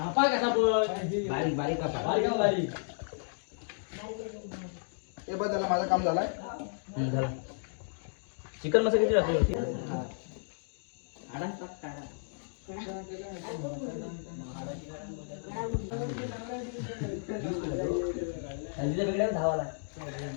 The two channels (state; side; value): silent; right; digital silence